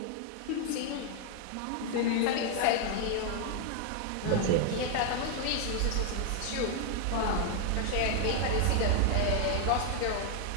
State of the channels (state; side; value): different; both; correlation 0.00